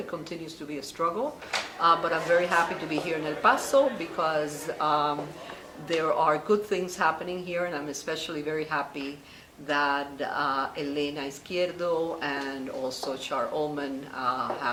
continues to be a struggle. But I'm very happy to be here in El Paso because there are good things happening here, and I'm especially very happy that Elena Izquierdo and also Char Ullman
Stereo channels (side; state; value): both; identical; correlation 1.00